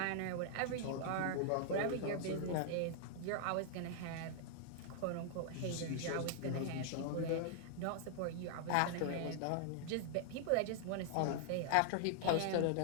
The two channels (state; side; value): different; both; correlation -0.01